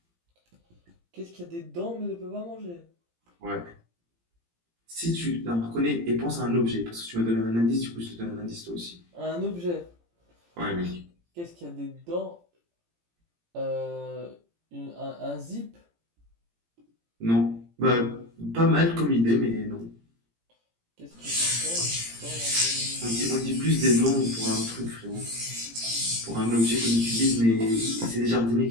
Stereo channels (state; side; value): late; left; 17 ms